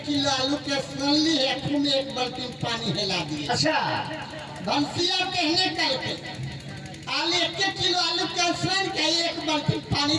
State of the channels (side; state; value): both; identical; correlation 1.00